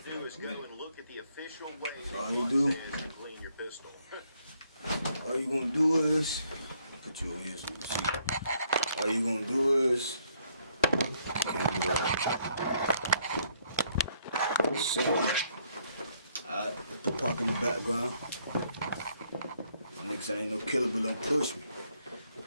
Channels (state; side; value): inverted; both; correlation -0.70